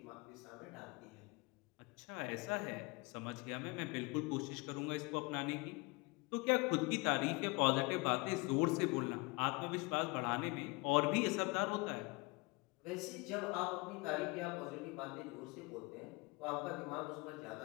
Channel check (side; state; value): right; quieter; 26.6 dB